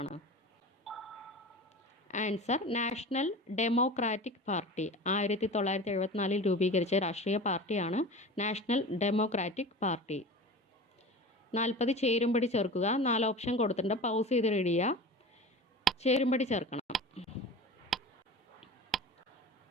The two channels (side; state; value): both; normal; correlation 0.34